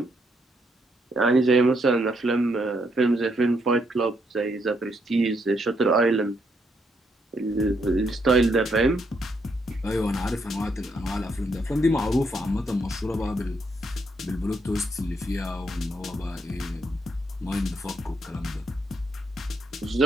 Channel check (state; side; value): normal; both; correlation 0.75